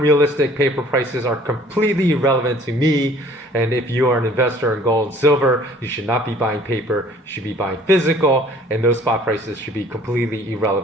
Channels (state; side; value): normal; both; correlation 0.54